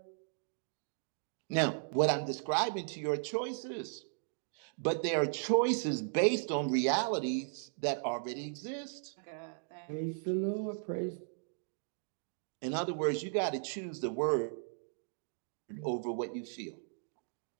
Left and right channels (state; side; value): silent; left; digital silence